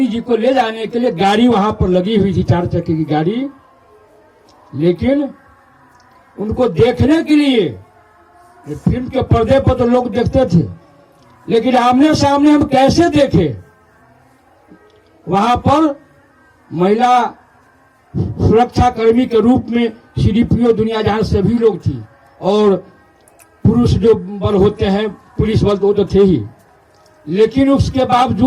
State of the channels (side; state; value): both; identical; correlation 1.00